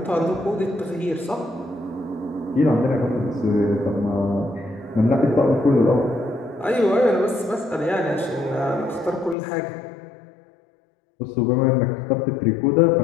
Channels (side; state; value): right; drops out; at 9.3 s